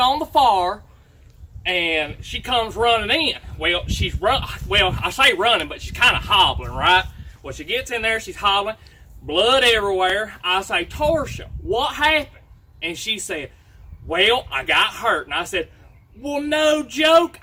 the fire, and she comes running in. Well, I say running, but she's kind of hobbling, right? Well, she gets in there, she's hobbling, blood everywhere. I say, Torsia, what happened? And she said, well, I got hurt. And I said, well, no joke,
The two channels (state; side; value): identical; both; correlation 1.00